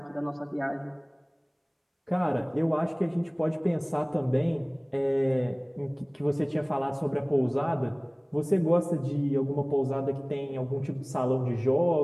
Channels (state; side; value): identical; both; correlation 1.00